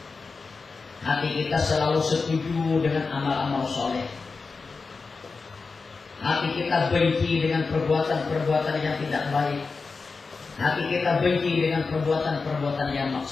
Hati kita selalu setuju dengan amal-amal soleh. Hati kita benci dengan perbuatan-perbuatan yang tidak baik. Hati kita benci dengan perbuatan-perbuatan yang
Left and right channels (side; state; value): right; quieter; 4.4 dB